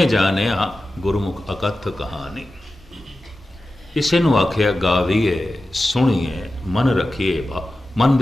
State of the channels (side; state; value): both; normal; correlation 0.93